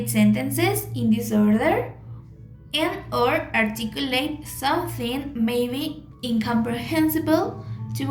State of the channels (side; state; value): both; identical; correlation 1.00